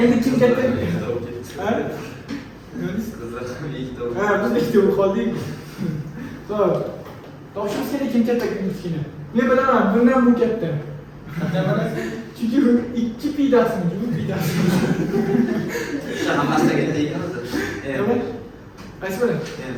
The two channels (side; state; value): both; identical; correlation 1.00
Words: endi kim katta? Ha? Kızlar ikkita. Ha, biz ikkita bo'lib qoldik. Xo'p. Toshimiz kerak kim katta, kim kichkina. Men bilaman, bundan bu katta. Chunki 2 pi taqsim 3 pi taqsim. Hammasiga ketgan. Nima? Qaysi biri?